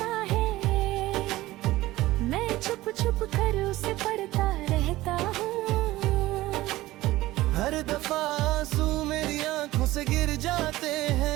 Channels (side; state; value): left; quieter; 17.3 dB